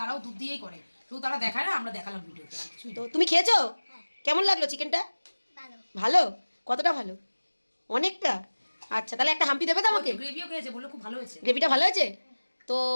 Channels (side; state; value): both; inverted; correlation -1.00